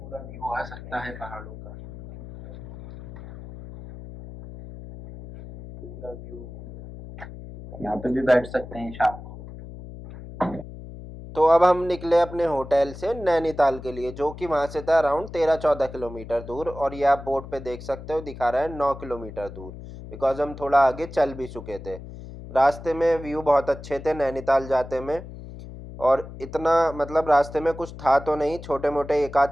व्यू आ सकता है पहाड़ों का, पूरा व्यू। यहाँ पे भी बैठ सकते हैं शाम को। तो अब हम निकले अपने होटल से नैनीताल के लिए, जो कि वहाँ से था अराउंड 13-14 किलोमीटर दूर, और ये आप बोर्ड पे देख सकते हो दिखा रहा है 9 किलोमीटर दूर, बिकॉज हम थोड़ा आगे चल भी चुके थे। रास्ते में व्यू बहुत अच्छे थे नैनीताल जाते में, और इतना मतलब रास्ते में कुछ था तो नहीं, छोटे मोटे एक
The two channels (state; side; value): noise; left; hum, 13 dB below the sound